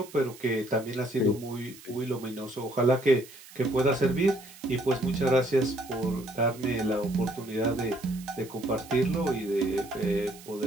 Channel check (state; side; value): noise; right; hiss, 19 dB below the sound